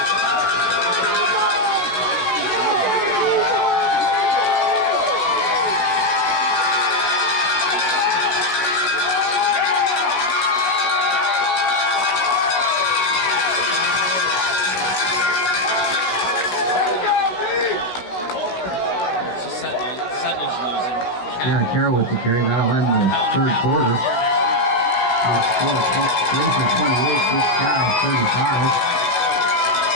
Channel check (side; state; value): right; late; 16 ms